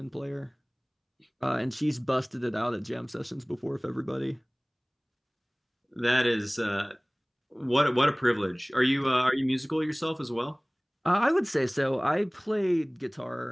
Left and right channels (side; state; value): both; identical; correlation 1.00